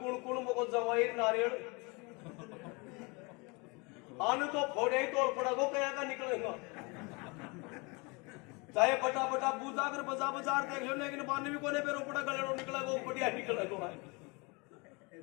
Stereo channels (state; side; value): quieter; right; 28.6 dB